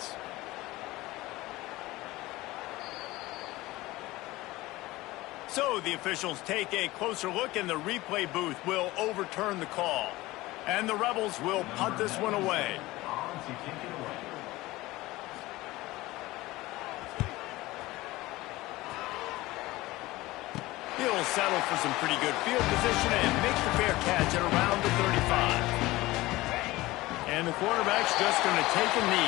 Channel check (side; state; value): right; quieter; 19.0 dB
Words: So the officials take a closer look, and the replay booth will overturn the call. And the Rebels will punt this one away. He'll settle for some pretty good field position and make the fair catch at around the 35. And the quarterback's just going to take a